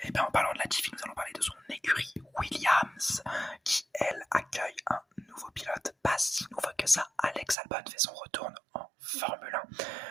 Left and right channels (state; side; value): drops out; left; at 7.6 s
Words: Et bien en parlant de Latifi, nous allons parler de son écurie Williams, qui elle accueille un nouveau pilote, pas si nouveau que ça. Alex Albon fait son retour en Formule 1.